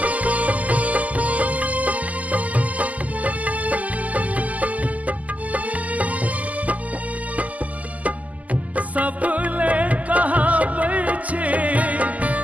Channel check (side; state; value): left; late; 0.075 ms